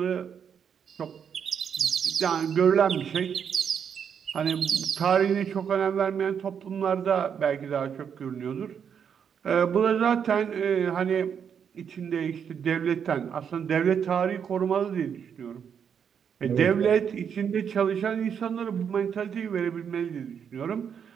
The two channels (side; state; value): left; quieter; 7.6 dB